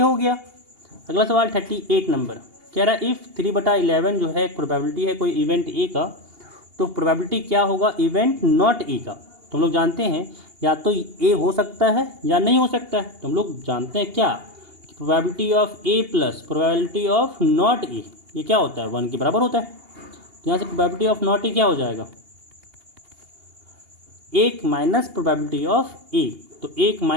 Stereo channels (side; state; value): left; late; 2.8 ms